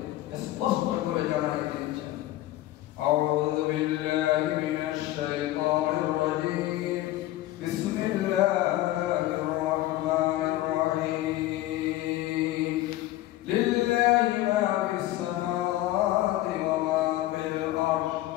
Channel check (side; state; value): right; quieter; 15.6 dB